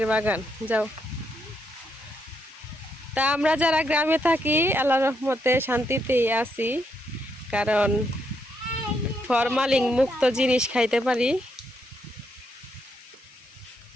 বাগান। যাও। তা আমরা যারা গ্রামে থাকি আল্লাহর রহমতে শান্তিতেই আছি, কারণ ফরমালিন মুক্ত জিনিস খাইতে পারি।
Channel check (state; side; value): normal; both; correlation 0.77